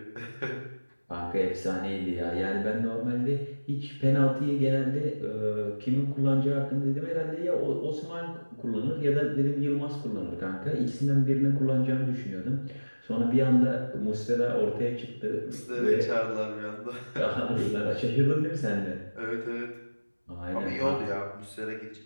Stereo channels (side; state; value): both; inverted; correlation -1.00